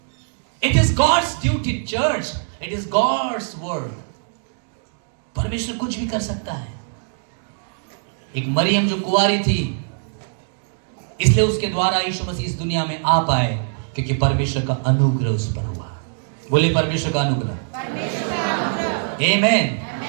It is God's duty church, it is God's work. परमेश्वर कुछ भी कर सकता है। एक मरियम जो कुंवारी थी, इसलिए उसके द्वारा यीशु मसीह इस दुनिया में आ पाए, क्योंकि परमेश्वर का अनुग्रह उस पर हुआ। बोले परमेश्वर का अनुग्रह। आमीन।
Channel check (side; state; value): left; silent; digital silence